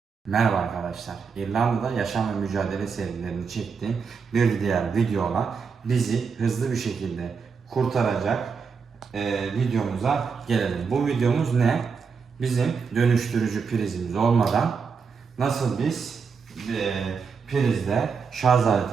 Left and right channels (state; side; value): quieter; left; 5.6 dB